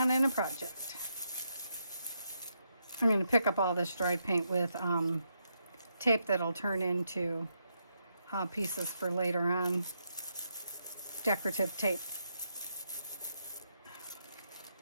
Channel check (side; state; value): both; inverted; correlation -0.80